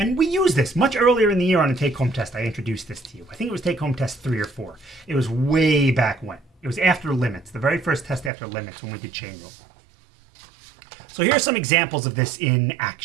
we used this much earlier in the year on a take-home test. I introduced this to you. I think it was take-home test 3 or 4. It was way back when. It was after limits, the very first test after limits when we did chain rule. So here are some examples of this in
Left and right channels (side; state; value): left; drops out; at 8.3 s